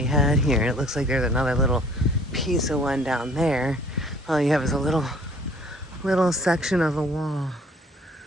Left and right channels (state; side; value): normal; both; correlation 0.55